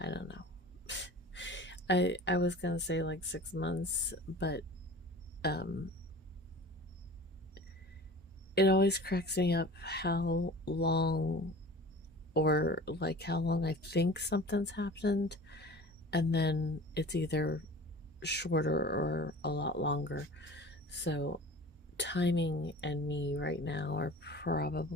don't know. I was gonna say like 6 months, but it always cracks me up how long, or like how long I think something's happened, and then it's either shorter or a lot longer. So timing and me right now are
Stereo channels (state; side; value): normal; both; correlation 0.40